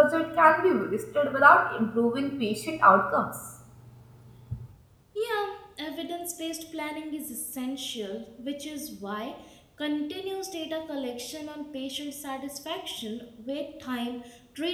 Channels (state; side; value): identical; both; correlation 1.00